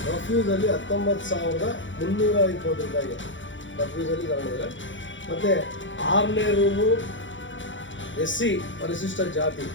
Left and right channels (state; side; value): late; right; 0.55 ms